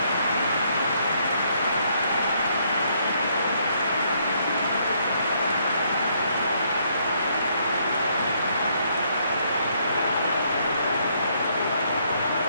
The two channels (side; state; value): both; inverted; correlation -0.70